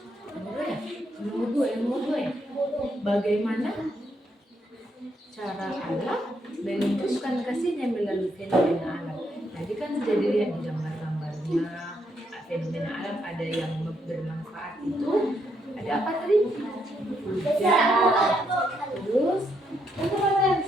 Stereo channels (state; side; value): normal; both; correlation 0.77